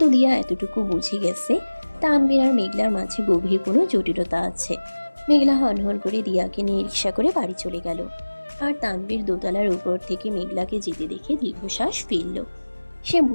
দিয়া এতটুকু বুঝে গেছে তানভীর আর মেঘলার মাঝে গভীর কোনো জটিলতা আছে। মেঘলা হনহন করে দিয়াকে নিয়ে রিক্সা করে বাড়ি চলে গেল। আর তানভীর দোতলার উপর থেকে মেঘলাকে যেতে দেখে দীর্ঘশ্বাস ফেলল। সে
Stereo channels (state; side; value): inverted; both; correlation -1.00